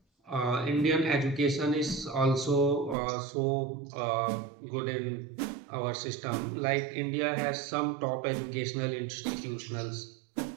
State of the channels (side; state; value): left; drops out; at 3.0 s